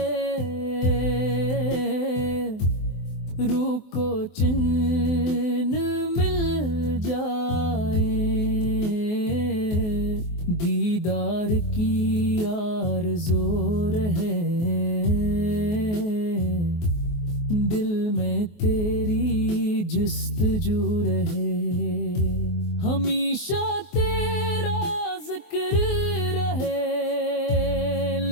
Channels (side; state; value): right; late; 23 ms